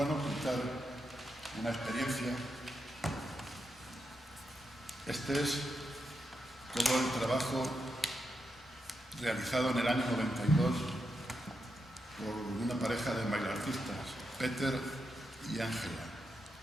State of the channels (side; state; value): both; normal; correlation 0.85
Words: una experiencia. Este es todo el trabajo realizado en el año 92 por una pareja de bailartistas, Peter y Ángela.